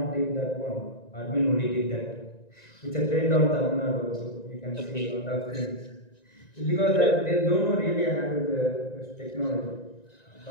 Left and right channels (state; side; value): late; right; 1.9 ms